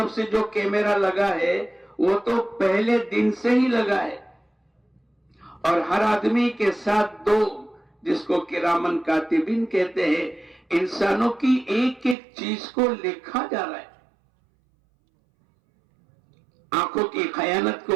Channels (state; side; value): drops out; left; at 12.2 s